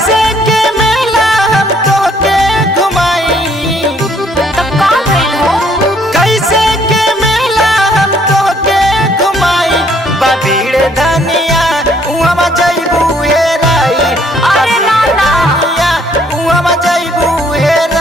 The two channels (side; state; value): both; normal; correlation 0.65